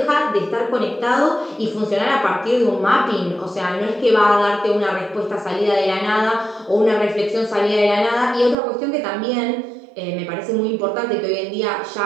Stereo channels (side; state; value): left; drops out; at 8.6 s